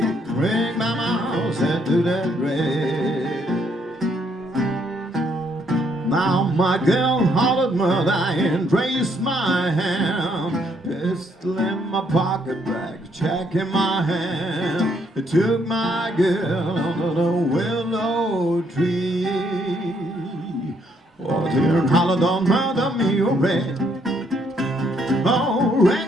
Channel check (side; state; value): both; normal; correlation 0.71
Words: ring my mouse into that rag. Now my girl hollered mother and raised my hand. Pistol in my pocket bag, check in my hand. It took my girl under the willow tree. Oh, dear, and hollered on mother me, oh, rag. Oh,